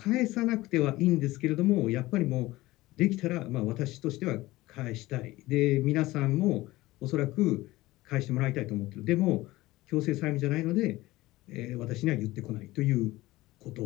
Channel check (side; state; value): right; quieter; 18.5 dB